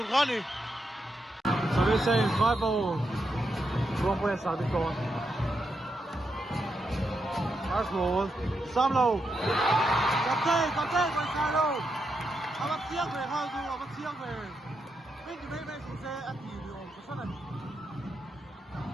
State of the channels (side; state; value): both; normal; correlation 0.83